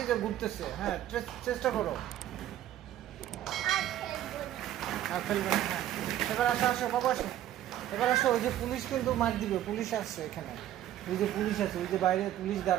যে ঘুরতেছে, হ্যাঁ চেষ্টা করো। আর ফেলবে না, হ্যাঁ। এবার আসো আসো বাবা, আসো এবার আসো। ওই যে পুলিশ কিন্তু মার দিবে, পুলিশ আসছে এখানে। ওই যে পুলিশ আছে, ওই যে বাইরে পুলিশ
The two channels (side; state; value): left; quieter; 12.5 dB